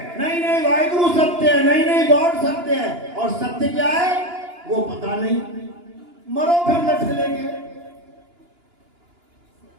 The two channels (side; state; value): left; late; 2.9 ms